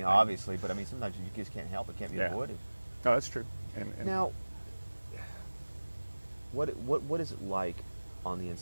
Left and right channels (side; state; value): both; inverted; correlation -1.00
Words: obviously, but I mean, sometimes you just can't help it; can't be avoided. No, that's true. And now, what is it like on the